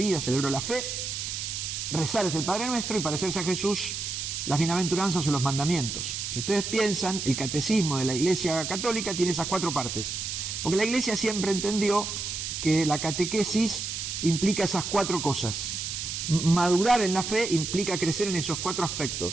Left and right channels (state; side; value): noise; right; hiss, 4 dB below the sound